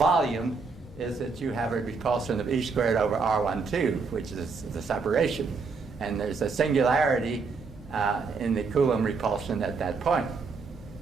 is that you have a repulsion of E²/R12, which is the separation. And there's a singularity in the Coulomb repulsion at that point.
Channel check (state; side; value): quieter; left; 4.7 dB